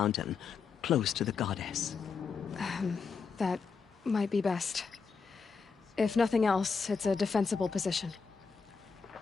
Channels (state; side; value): quieter; right; 5.4 dB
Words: close to the goddess. That might be best. If nothing else, it's a defensible position.